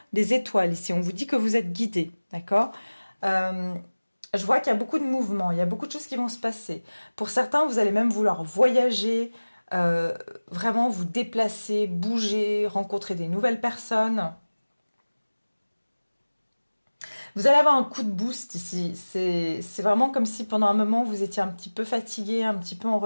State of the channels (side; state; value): both; inverted; correlation -1.00